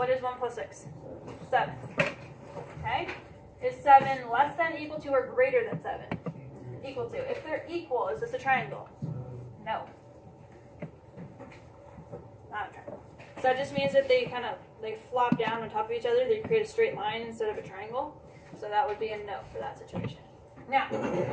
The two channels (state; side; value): identical; both; correlation 1.00